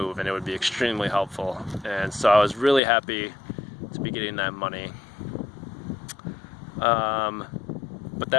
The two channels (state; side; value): drops out; right; at 2.8 s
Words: and it would be extremely helpful, and so I was really happy to be getting that money. But